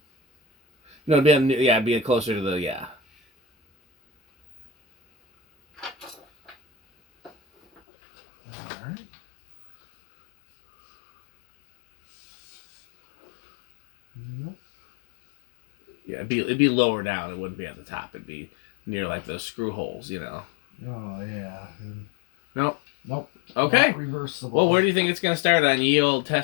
no, it'd be closer to the All right. Nope. Yeah, it'd be lower down. It wouldn't be at the top. It'd be near like those screw holes, you know. Oh yeah. Nope. Nope. Okay. Not reversible. Well, where do you think it's going to start on ye old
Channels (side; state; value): right; drops out; at 7.8 s